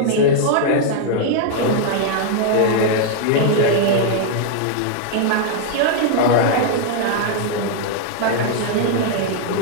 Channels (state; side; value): different; both; correlation -0.01